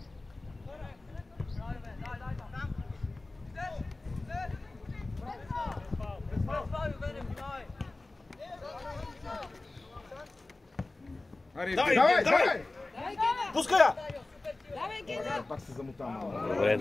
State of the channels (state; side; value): quieter; right; 3.1 dB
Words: Давай! Пускай я! Давай, Гена! Пак се замотам. Добре.